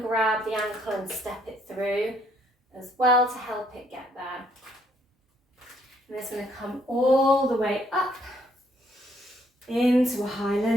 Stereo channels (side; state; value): both; normal; correlation 0.68